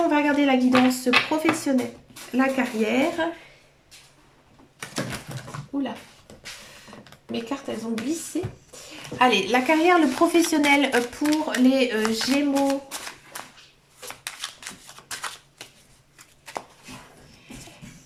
va regarder la guidance professionnelle. La carrière. Oula. Mes cartes, elles ont glissé. Allez, la carrière, le professionnel pour les Gémeaux.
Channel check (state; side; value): identical; both; correlation 1.00